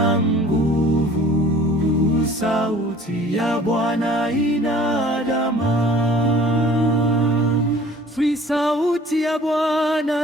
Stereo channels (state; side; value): normal; both; correlation 0.50